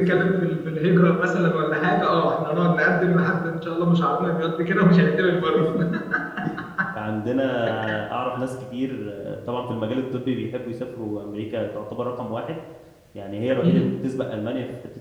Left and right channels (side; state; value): both; identical; correlation 1.00